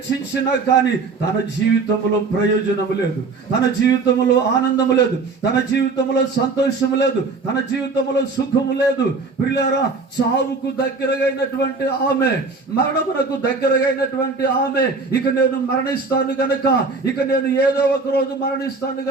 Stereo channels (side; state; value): left; quieter; 4.1 dB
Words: కానీ తన జీవితంలో ప్రయోజనము లేదు, తన జీవితంలో ఆనందము లేదు, తన జీవితంలో సంతోషము లేదు, తన జీవితంలో సుఖము లేదు. ప్రియులారా చావుకు దగ్గరగైనటువంటి ఆమె, మరణమునకు దగ్గరగైనటువంటి ఆమె ఇక నేను మరణిస్తాను గనక, ఇక నేను ఏదో ఒక రోజు మరణిస్తాను